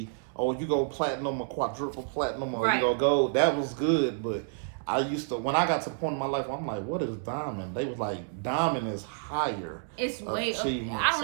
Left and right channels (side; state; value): left; silent; 58 dB below the other